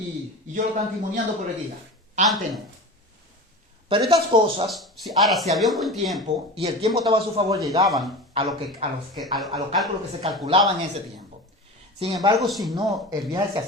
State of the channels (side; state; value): both; normal; correlation 0.30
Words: yo lo están timoniando por el día. Antes no. Pero estas cosas, si había un buen tiempo y el tiempo estaba a su favor, llegaban a los cálculos que se calculaban en ese tiempo. Sin embargo, si no, el viaje se